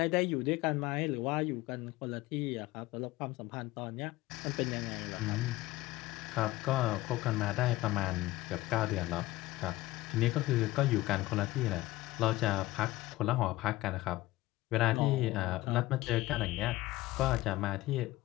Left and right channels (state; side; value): quieter; right; 17.8 dB